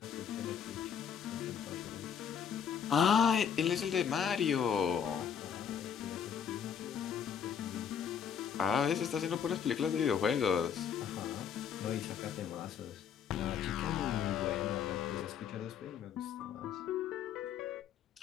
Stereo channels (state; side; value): quieter; right; 7.9 dB